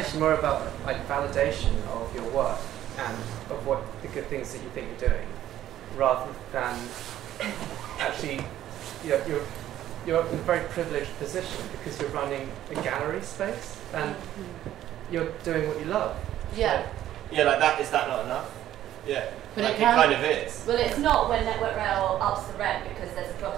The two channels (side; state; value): left; quieter; 12.5 dB